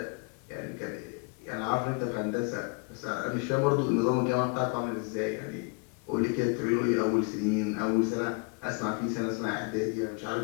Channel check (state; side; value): quieter; right; 32.9 dB